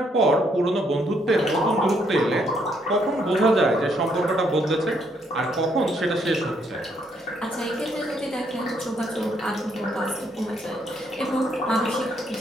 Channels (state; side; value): normal; both; correlation 0.72